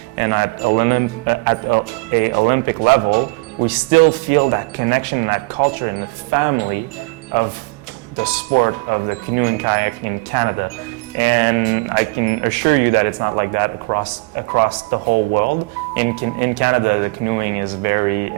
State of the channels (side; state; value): left; quieter; 27.8 dB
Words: and at a Olympic level, we still feel that connection and that culture and the family of the sport of the canoe and kayak in Canada. And I can assure you that it's not like that across the whole world. In Canada, the canoeing is very